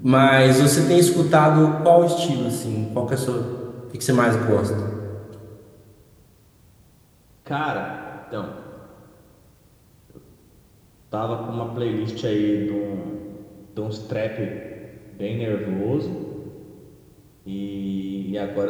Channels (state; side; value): identical; both; correlation 1.00